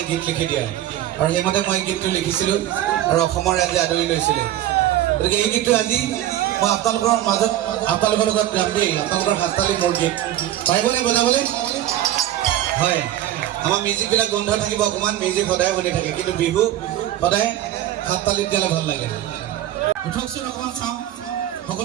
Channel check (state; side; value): quieter; left; 12.9 dB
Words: গীত লিখি দিয়া আৰু সেইমতে মই গীতটো লিখিছিলোঁ আৰু অসমৰ ৰাইজে আদৰি লৈছিলে গতিকে এই গীতটো আজি মই আপোনালোকৰ মাজত আপোনালোকৰ লগত গাম দেই আপোনালোকৰ হাততালি মোৰ গীত পাৰিবনে বজাবলৈ হয় আমাৰ মিউজিকবিলাক বন্ধ থাকিব অকণমান মিউজিক সদায় শুনি থাকে কিন্তু বিহু সদায় হাততালিত গালে ভাল লাগে উঠকচোন অকণমান চাওঁ